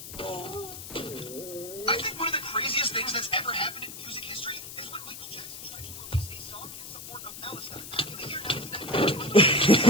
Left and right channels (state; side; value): noise; left; hiss, 11 dB below the sound